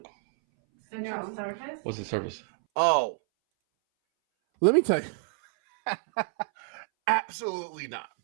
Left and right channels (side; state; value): left; silent; 59 dB below the other